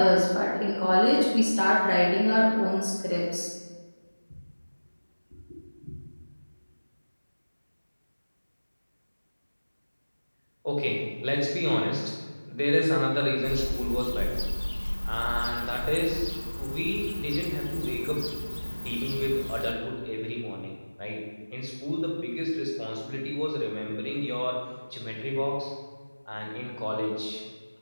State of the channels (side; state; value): both; inverted; correlation -1.00